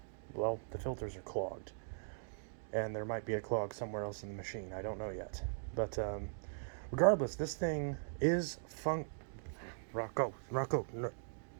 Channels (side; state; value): left; silent; digital silence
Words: well, the filters are clogged. And there might be a clog somewhere else in the machine. I don't know yet. But regardless, this thing is Rocco, no.